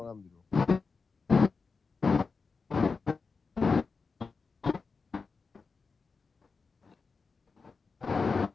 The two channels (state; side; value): quieter; right; 4.7 dB